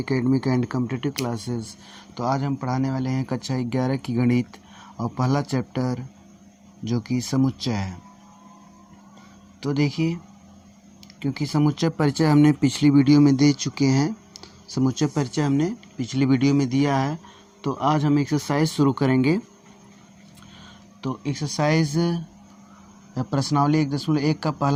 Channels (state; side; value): identical; both; correlation 1.00